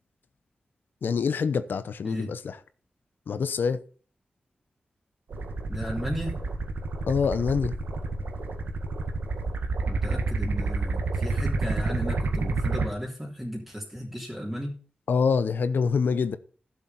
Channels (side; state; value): both; normal; correlation 0.83